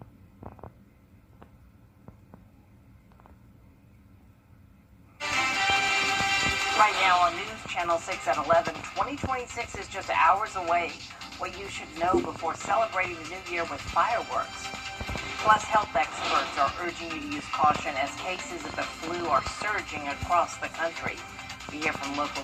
Right now on News Channel 6 at 11, 2026 is just hours away. What you should know before celebrating the new year with fireworks. Plus, health experts are urging you to use caution as cases of the flu are surging across the country. We hear from local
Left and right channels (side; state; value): both; identical; correlation 1.00